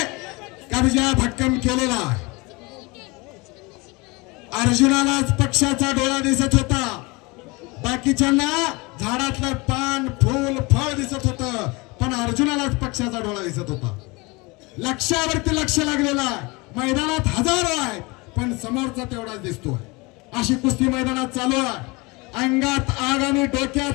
कब्जा भक्कम केलेला अर्जुनालाच पक्षाचा डोळा दिसत होता बाकीच्यांना झाडातलं पान फूल फळ दिसत होतं पण अर्जुनालाच पक्षाचा डोळा दिसत होता लक्ष्यावरती लक्ष लागलेला मैदानात हजारो आहेत पण समोरचा तेवढाच दिसतोय अशी कुस्ती मैदानात चालू आहे अंगात आग आणि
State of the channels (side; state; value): right; quieter; 25.7 dB